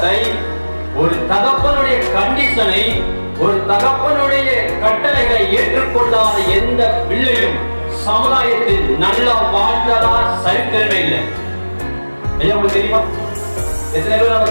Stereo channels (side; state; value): both; inverted; correlation -1.00